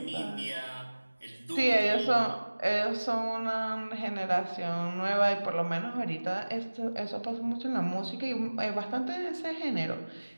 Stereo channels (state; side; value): inverted; both; correlation -1.00